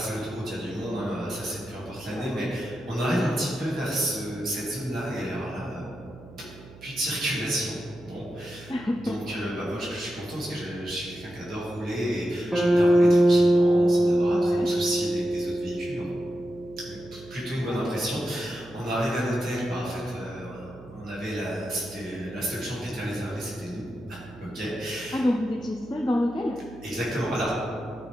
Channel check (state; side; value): noise; right; hum, 19 dB below the sound